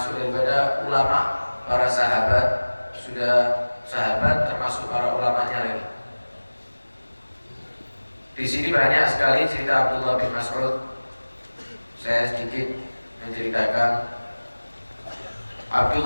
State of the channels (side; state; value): both; inverted; correlation -1.00